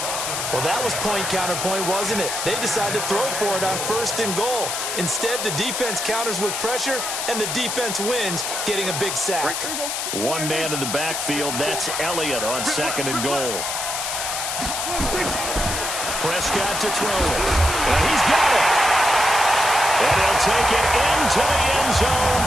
Well, that was point counterpoint, wasn't it? They decided to throw for it on 1st and goal. Instead, the defense counters with pressure, and the defense wins, getting a big sack. One man in the backfield, that's Elliott on 2nd and goal. Prescott to throw it. And he's got it. And he'll take it into the end zone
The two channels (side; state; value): left; noise; hiss, 3 dB below the sound